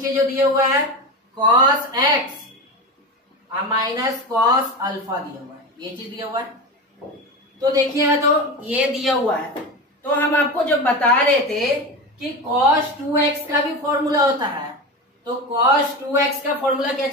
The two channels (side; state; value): both; normal; correlation 0.24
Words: जो दिया हुआ है cos x minus cos alpha दिया हुआ है, ये चीज दिया हुआ है। तो देखिए तो ये दिया हुआ है, तो हम आपको जब बता रहे थे कि cos 2x का भी फॉर्मूला होता है, तो cos 2x का फॉर्मूला क्या